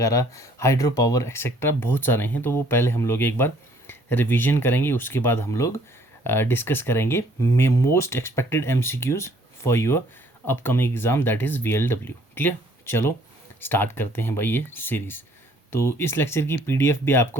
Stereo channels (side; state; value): both; normal; correlation 0.60